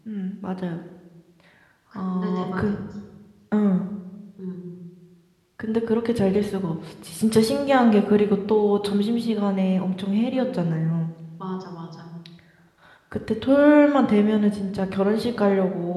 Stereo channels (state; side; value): identical; both; correlation 1.00